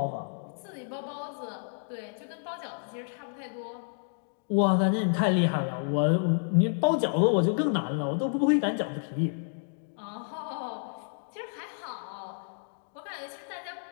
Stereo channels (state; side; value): silent; right; digital silence